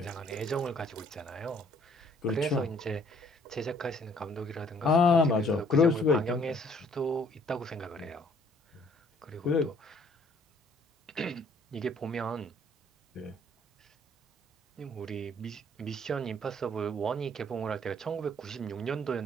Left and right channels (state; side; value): normal; both; correlation 0.60